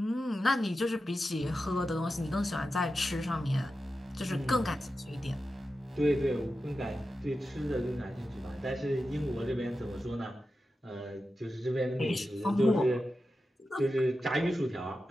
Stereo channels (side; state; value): both; normal; correlation 0.91